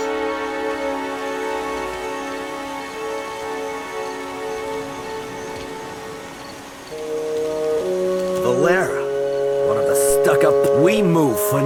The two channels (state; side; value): identical; both; correlation 1.00